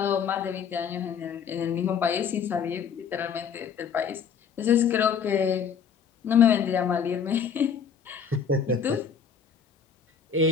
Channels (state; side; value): quieter; right; 6.9 dB